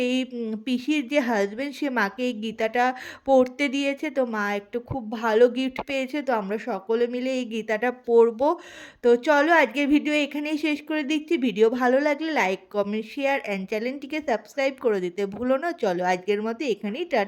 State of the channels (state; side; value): identical; both; correlation 1.00